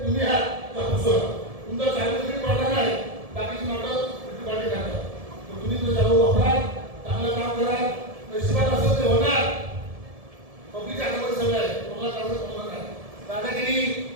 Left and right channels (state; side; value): late; left; 1.7 ms